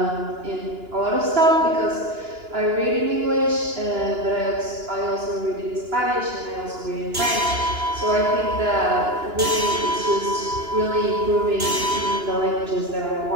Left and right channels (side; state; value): left; late; 2.9 ms